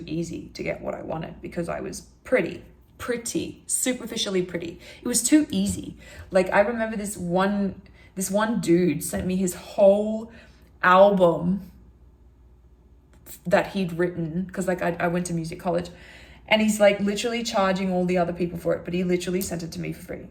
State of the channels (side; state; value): both; identical; correlation 1.00